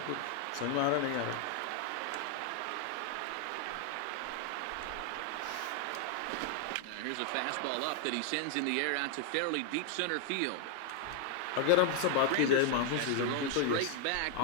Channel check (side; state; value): both; different; correlation 0.00